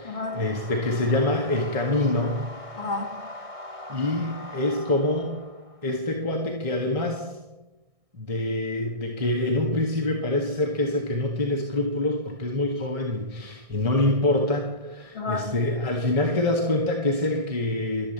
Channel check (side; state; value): left; late; 1.6 ms